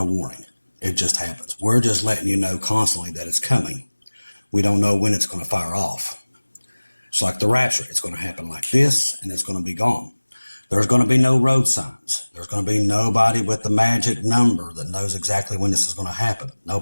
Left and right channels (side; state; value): both; inverted; correlation -1.00